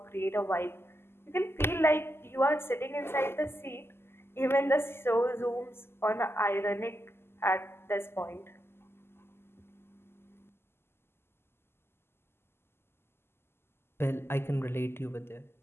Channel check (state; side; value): late; right; 0.12 ms